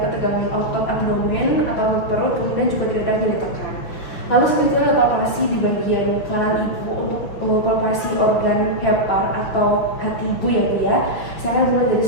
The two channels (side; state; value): right; late; 6.1 ms